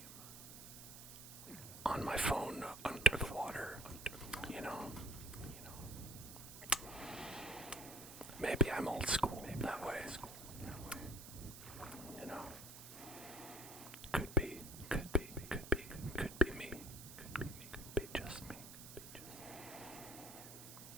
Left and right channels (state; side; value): noise; right; hiss, 13 dB below the sound